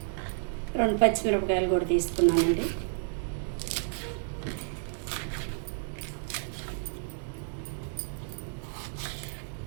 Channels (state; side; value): silent; left; digital silence